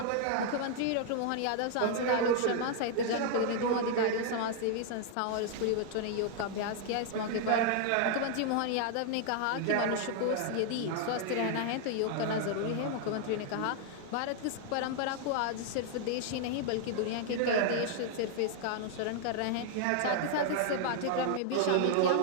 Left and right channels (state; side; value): different; both; correlation 0.00